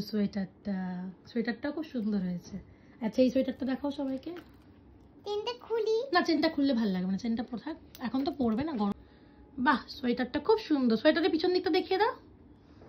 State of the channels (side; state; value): both; identical; correlation 1.00